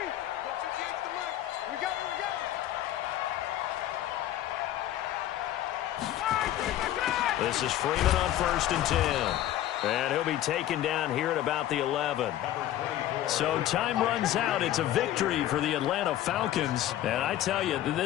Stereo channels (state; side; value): quieter; right; 13.0 dB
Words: 58 to Mike. We got it, we got it. This is Freeman on 1st and 10. And he'll be taken down here at about the 11. So time runs out. It's a victory for the Atlanta Falcons. And I tell you,